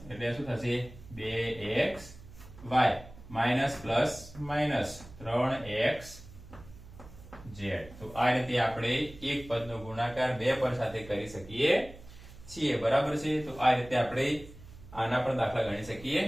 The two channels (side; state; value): right; noise; hum, 18 dB below the sound